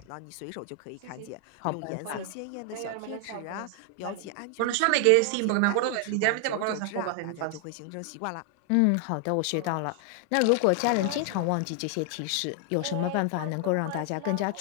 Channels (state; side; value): different; both; correlation 0.00